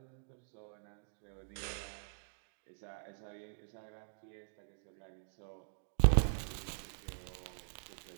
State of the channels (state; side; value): silent; left; digital silence